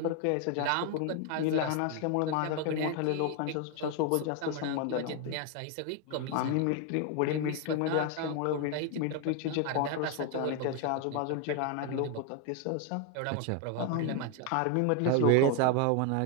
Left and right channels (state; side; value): different; both; correlation 0.01